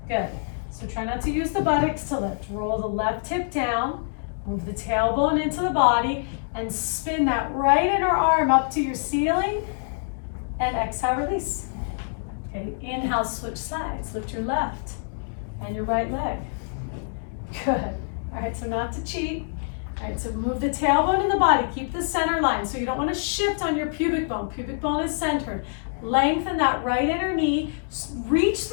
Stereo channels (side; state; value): right; silent; digital silence